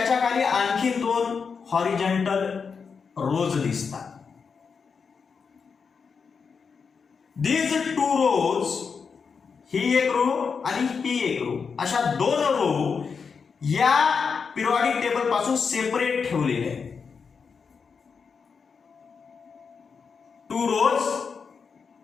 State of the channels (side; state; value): right; quieter; 5.7 dB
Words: खाली आणखी 2 हॉरिझॉन्टल रोज दिसतात. दीज 2 रोज, ही एक रो आणि ही एक रो, अशा 2 रो या पिरियॉडिक टेबल पासून सेपरेट ठेवलेले आहेत. 2 rows